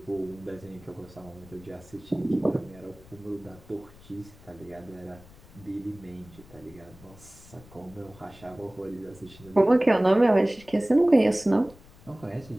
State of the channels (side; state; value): left; noise; rumble, 22 dB below the sound